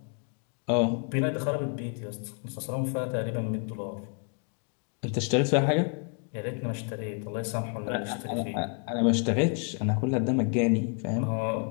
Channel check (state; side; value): quieter; right; 39.1 dB